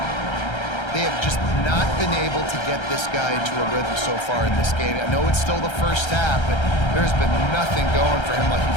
They have just not been able to get this guy into a rhythm so far in this game. I know it's still the first half, but there's been nothing going for him like you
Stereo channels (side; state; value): right; late; 1.3 ms